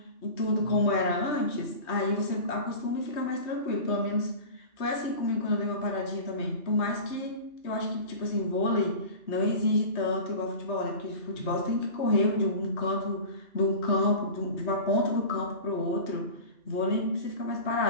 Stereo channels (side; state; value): right; late; 3.2 ms